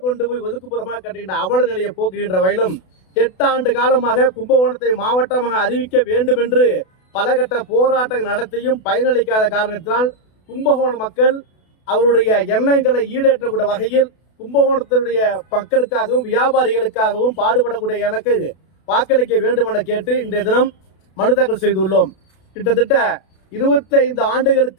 கொண்டு போய் ஒதுக்குப்புறமாக கட்டுகின்ற அவல நிலையை போக்குகின்ற வகையிலும் 8 ஆண்டு காலமாக கும்பகோணத்தை மாவட்டமாக அறிவிக்க வேண்டும் என்று பல கட்ட போராட்டங்கள் நடத்தியும் பயனளிக்காத காரணத்தினால் கும்பகோண மக்கள் அவருடைய எண்ணங்களை ஈடேற்றக்கூடிய வகையில் கும்பகோணத்தினுடைய மக்களுக்காகவும் வியாபாரிகளுக்காகவும் பாடுபடக்கூடிய எனக்கு வாக்களிக்க வேண்டும் என கேட்டு இன்றைய தினம் மனு தாக்கல் செய்துள்ளோம். கிட்டத்தட்ட 25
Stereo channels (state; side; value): late; right; 32 ms